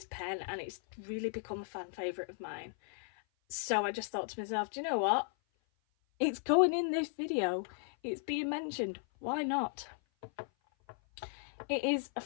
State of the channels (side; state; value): right; silent; 54 dB below the other